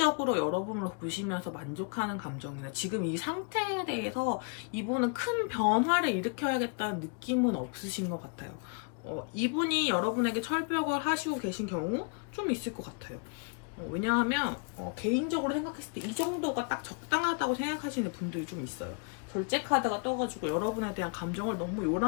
여러분을 보시면서 만족하는 감정이나 지금 이 상태에 대해서 이분은 큰 변화를 일으켜야겠다는 느낌은 없으신 것 같아요. 이분이 여러분에게 철벽을 하시고 계신 경우 좀 있을 것 같아요. 왜냐하면 개인적으로 생각했을 때 이 정도가 딱 적당하다고 생각하시는 분들이 좀 있어요. 절제 카드가 떠가지고 여러분에 대한 감정을 너무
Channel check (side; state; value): right; quieter; 36.7 dB